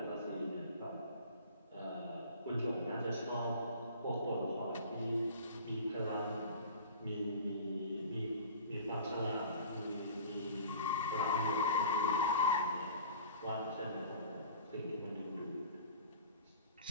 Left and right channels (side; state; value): both; inverted; correlation -0.52